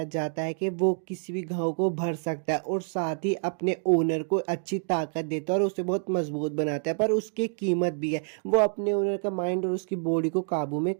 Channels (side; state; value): left; silent; 60 dB below the other